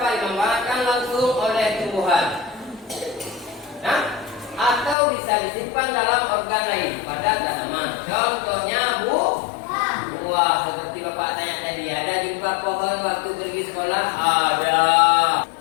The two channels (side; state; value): right; drops out; at 5.0 s